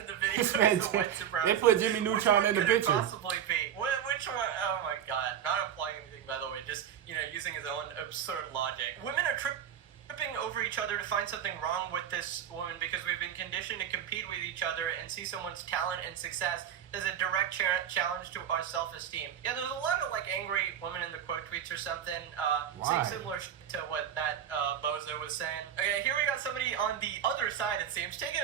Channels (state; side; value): quieter; left; 9.4 dB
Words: the video is a white supremacist. They put Jimmy Neutron in the picture. Which one could it possibly be? Which one? Oh my god! Not implying anything, by the way. Just using his own absurd logic. Women are tripping over each other to find something wrong with this woman because we've been conditioned to compete with each other and see someone's talent and success as a direct challenge to our self-esteem. Yeah, there's a lot of like angry women in the quote tweets or something saying similar to what that bozo was saying. Okay, here we got somebody on the other side, it seems, taking